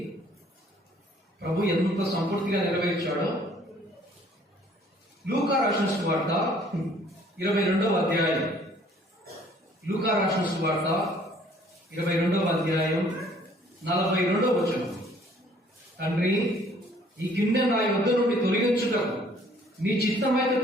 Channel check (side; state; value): both; normal; correlation 0.58